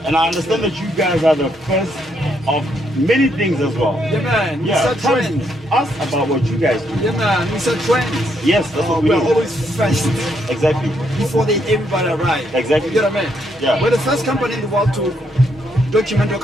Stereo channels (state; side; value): normal; both; correlation 0.75